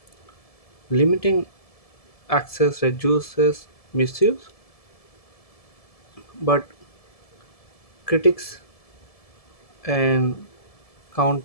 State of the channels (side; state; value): right; late; 1.7 ms